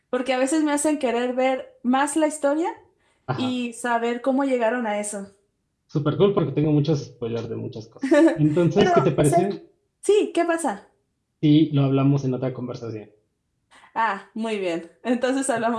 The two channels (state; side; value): identical; both; correlation 1.00